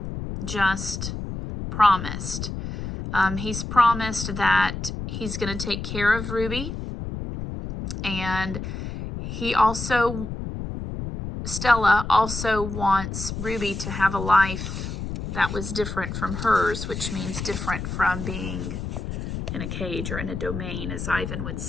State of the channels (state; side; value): noise; left; rumble, 6 dB below the sound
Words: just promised. He's promised that he's going to take care of Ruby. And Stella also wants Ruby to have a life that was different from hers, which means different from being in a cage or in a domain, as Ivan would